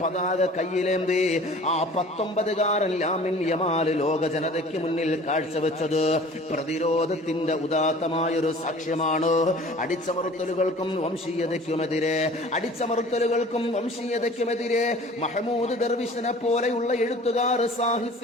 കയ്യിലേന്തി ആ 19-കാരൻ ലാമിൻ യമാൽ ലോക ജനതയ്ക്ക് മുന്നിൽ കാഴ്ചവെച്ചത് പ്രതിരോധത്തിന്റെ ഉദാത്തമായൊരു സാക്ഷ്യമാണ്. അടിച്ചമർത്തലുകൾക്കും വംശീയതയ്ക്കുമെതിരെ മഹ്മൂദ് ദർവിഷിനെ പോലെയുള്ള എഴുത്തുകാർ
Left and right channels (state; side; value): normal; both; correlation 0.46